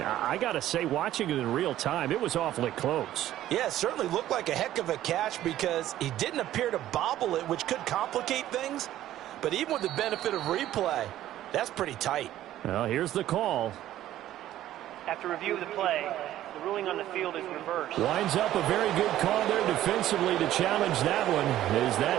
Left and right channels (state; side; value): quieter; left; 13.2 dB